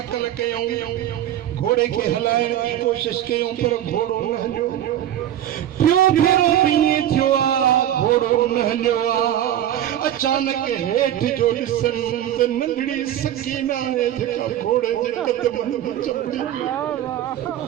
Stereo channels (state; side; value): quieter; left; 11.6 dB